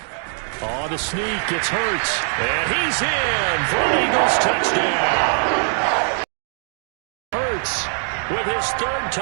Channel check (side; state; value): left; silent; 56 dB below the other